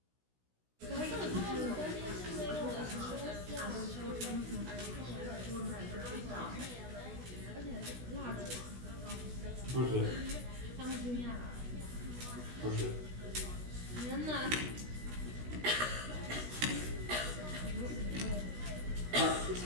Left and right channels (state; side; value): late; left; 16 ms